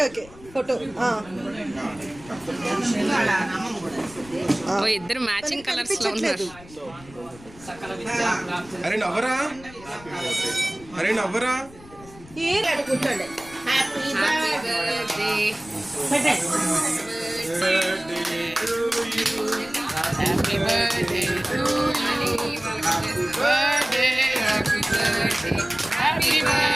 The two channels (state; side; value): noise; left; rumble, 21 dB below the sound